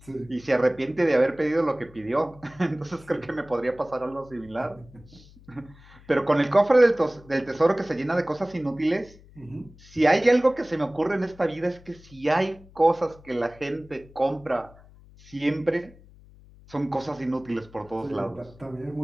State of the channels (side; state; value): left; noise; hum, 23 dB below the sound